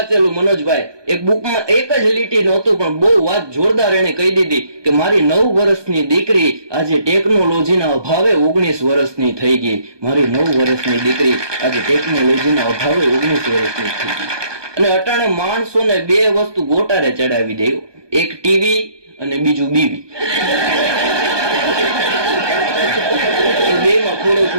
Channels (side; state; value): left; late; 1.2 ms